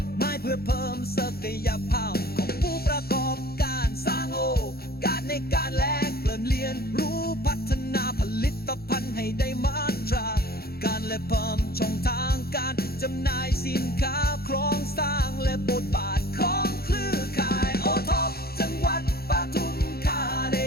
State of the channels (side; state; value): right; late; 0.45 ms